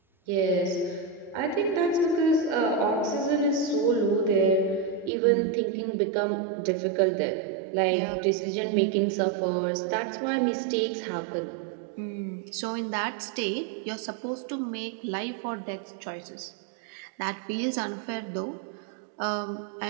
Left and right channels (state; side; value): drops out; left; at 5.1 s